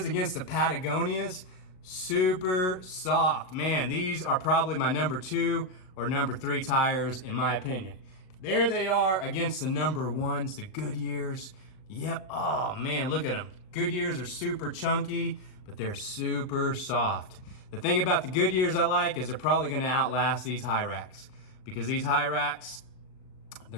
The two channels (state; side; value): late; right; 38 ms